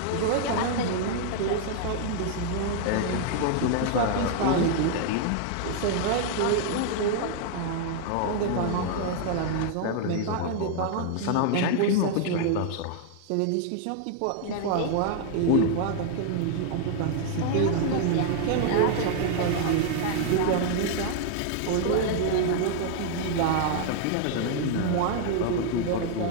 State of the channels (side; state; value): both; different; correlation 0.00